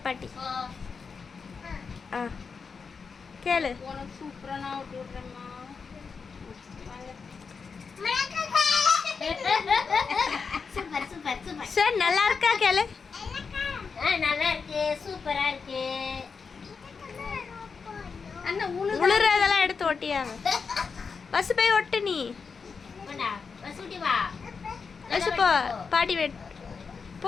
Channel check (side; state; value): right; quieter; 5.3 dB